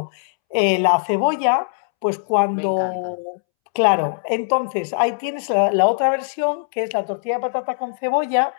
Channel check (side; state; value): right; silent; 65 dB below the other